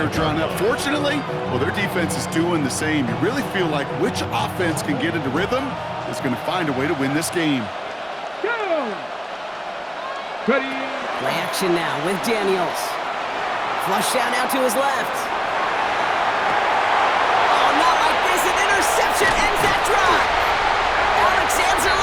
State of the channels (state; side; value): identical; both; correlation 1.00